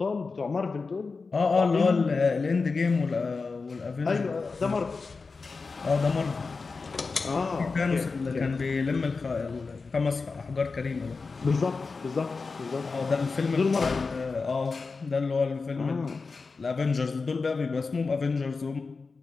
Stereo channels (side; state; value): right; quieter; 4.4 dB